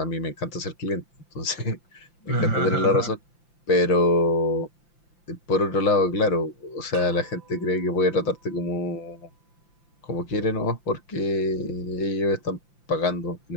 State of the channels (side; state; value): right; late; 5.8 ms